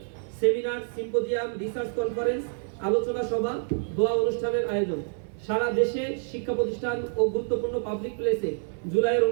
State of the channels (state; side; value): silent; left; digital silence